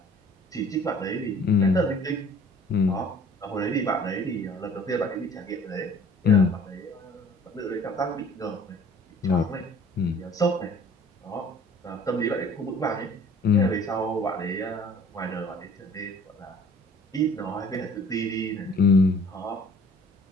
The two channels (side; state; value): both; normal; correlation 0.51